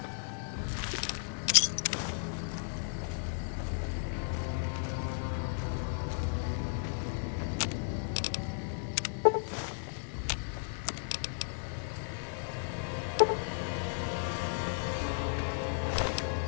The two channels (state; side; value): silent; right; digital silence